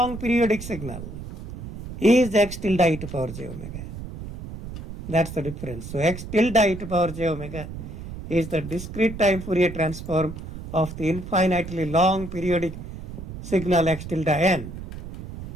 periodic signal, is x tilde e to power j omega. That's the difference. So x tilde e to power j omega is the discrete time Fourier transform of the infinitely long periodic signal x tilde n.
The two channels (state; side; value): noise; right; rumble, 10 dB below the sound